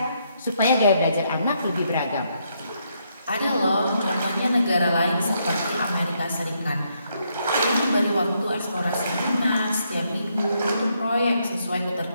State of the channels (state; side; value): inverted; both; correlation -0.76